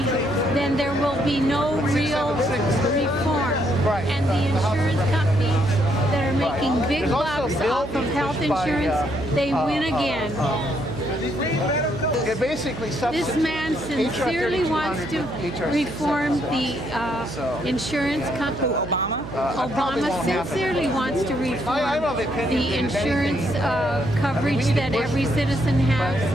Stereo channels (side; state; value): right; noise; hum, 10 dB below the sound